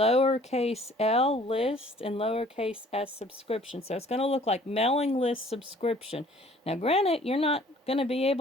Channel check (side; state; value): both; normal; correlation 0.54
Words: l list, and lowercase s subscription. So it's going to look like mailing list subscription. Now granted, you're not going to be